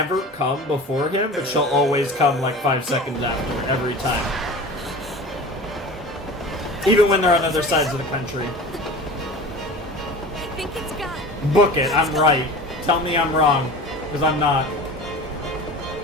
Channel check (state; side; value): normal; both; correlation 0.36